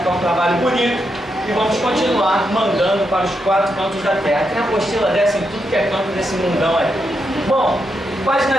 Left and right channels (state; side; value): normal; both; correlation 0.83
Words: um trabalho bonito. E vamos continuar mandando para os 4 cantos da terra. Tem apostila dessa em tudo que é canto desse mundão aí. Bom, página